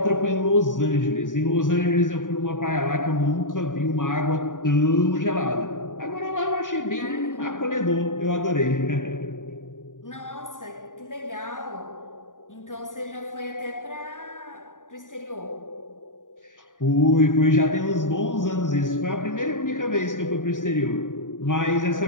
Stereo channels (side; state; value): right; late; 0.88 ms